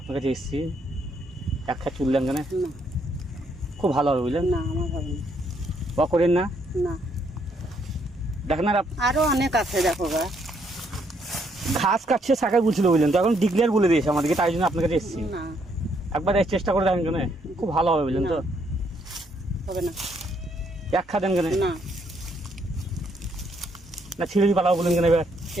কাছে এসেছি। একটা চুল দেন কেন? খুব ভালো হবে, বুঝলেন? না, আমার হবে না। বা করেন না? না, দেখেন আর আরো অনেক আছে, দেখো গা। ঘাস কাটছে শাখায় বলছিল, বুঝলেন? তো এখন ডিক্লেয়ার বলে দিয়েছে আমাদেরকে, তাই জন্য আপনার কাছে এসেছি। না, একবার চেষ্টা করে দেখেন কেন, খুব ভালো হবে, বুঝলেন? তো হবে না। এক খা দেন কেন? না, না ছিঁড়ে দিয়ে পালাবো বলেন কেন? এবার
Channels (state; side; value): normal; both; correlation 0.72